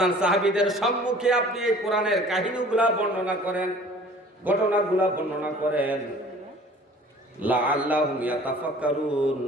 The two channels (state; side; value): normal; both; correlation 0.49